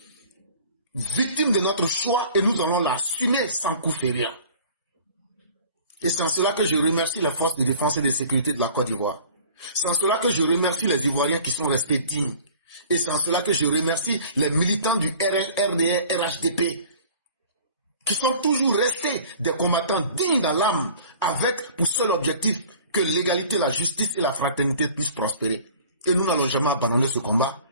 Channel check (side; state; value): both; inverted; correlation -0.47